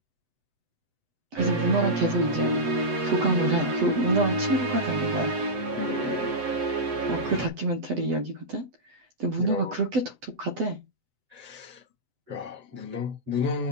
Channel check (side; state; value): left; late; 7.9 ms